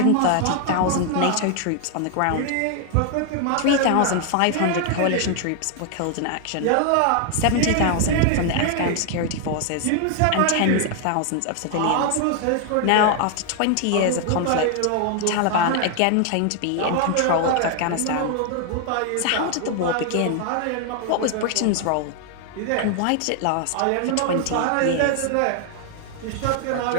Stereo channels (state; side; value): different; both; correlation 0.00